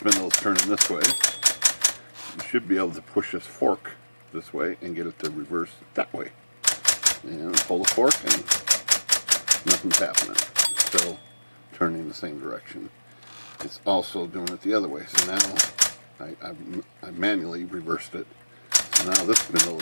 is turning this way. You should be able to push this fork this way and get it to reverse that way. And pull the fork and nothing's happening. It's still turning the same direction. It's also doing it the other way. So now I manually reversed it. So now this spindle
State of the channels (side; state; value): both; inverted; correlation -1.00